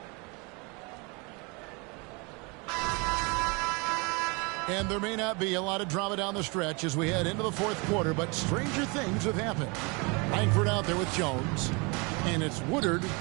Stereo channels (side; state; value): left; quieter; 29.7 dB